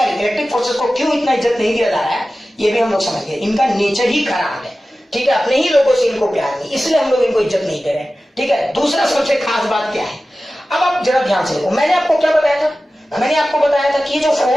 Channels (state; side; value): normal; both; correlation 0.95